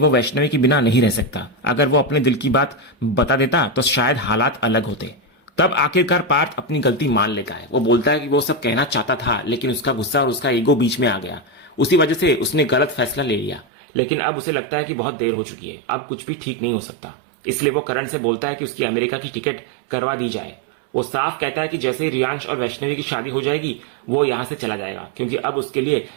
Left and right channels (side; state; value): left; drops out; at 13.7 s